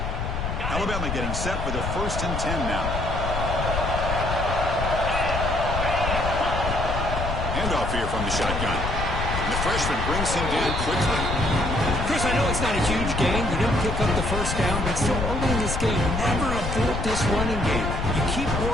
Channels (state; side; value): noise; left; rumble, 3 dB below the sound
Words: Alabama getting set for the 1st and 10 now. Handoff here from the shotgun. And the freshman brings him down quickly. Chris, I know it's not a huge gain. You didn't pick up the first down, but still early in this game, never abort this running game. You keep